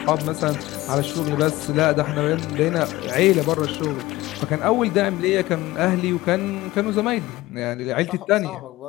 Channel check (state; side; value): quieter; right; 18.1 dB